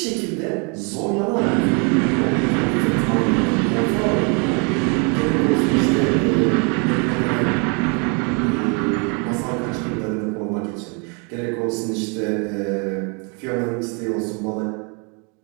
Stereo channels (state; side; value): quieter; left; 34.5 dB